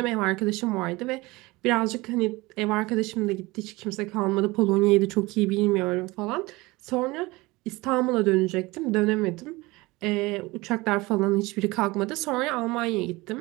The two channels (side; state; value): left; quieter; 21.9 dB